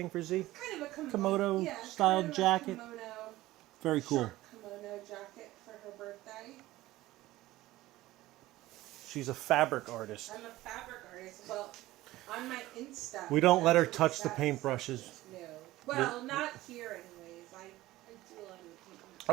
for Z? kind of a Komodo yeah, style kind of a jacket. Kimono, Very cool. short kimono jacket for her birthday. She's a fabric artist. I'm a fabric artist. Well, on my Insta. We don't let her that's touch the what paintbrushes. No. Well, not here, anyways. I do a lot of the painting.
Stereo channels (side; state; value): left; quieter; 17.0 dB